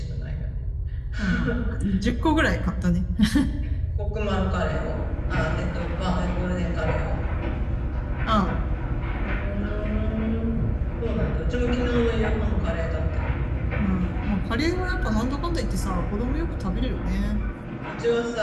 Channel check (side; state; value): both; identical; correlation 1.00